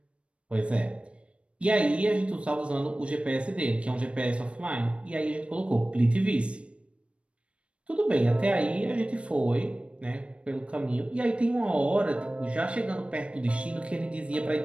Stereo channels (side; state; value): left; late; 0.060 ms